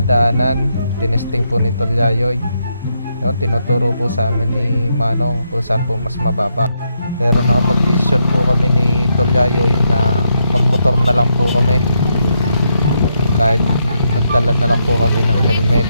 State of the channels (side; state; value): both; inverted; correlation -0.80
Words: Tinesting po ni Tolyayoy. Yun, tinuturo po sa amin ni Manong kung saan po mas mababa. Pero nakapag-decision po kami ni Tolyayoy na magmotor na lang po kami. Kahit nagdala na lang po kami ng helmet